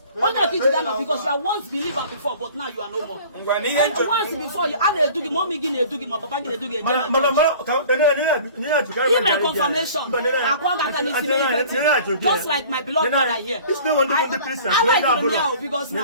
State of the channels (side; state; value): both; inverted; correlation -0.46